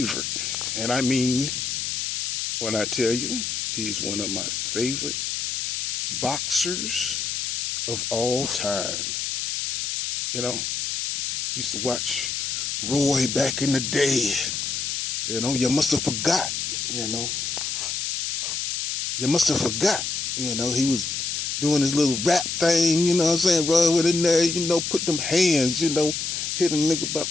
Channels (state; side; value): noise; left; hiss, 2 dB below the sound